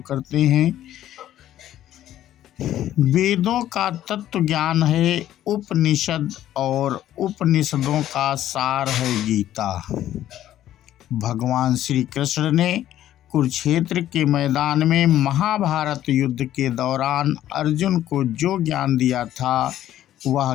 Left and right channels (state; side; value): quieter; right; 12.5 dB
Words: हैं। वेदों का तत्व ज्ञान है उपनिषद और उपनिषदों का सार है गीता। भगवान श्री कृष्ण ने कुरुक्षेत्र के मैदान में महाभारत युद्ध के दौरान अर्जुन को जो ज्ञान दिया था वह